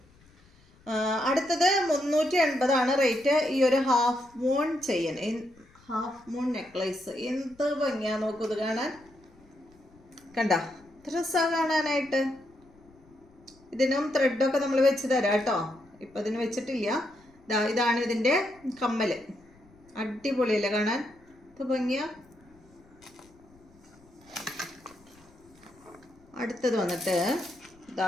അടുത്തത് 380 റേറ്റ്. ഈ ഒരു half moon chain, half moon necklace. എന്ത് ഭംഗിയാ നോക്കൂ ഇത് കാണാൻ. കണ്ട രസമാണ് കാണാനായിട്ട്. ഇതിനും ത്രെഡൊക്കെ നമ്മൾ വെച്ച് തരാം കേട്ടോ. ഇപ്പം ഇതിന് വെച്ചിട്ടില്ല. ഇതാണ് ഇതിൻ്റെ കമ്മൽ. അടിപൊളിയല്ലേ കാണാൻ. ഇത് ഭംഗിയാ. അടുത്തത് വന്നിട്ട്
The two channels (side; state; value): left; noise; rumble, 28 dB below the sound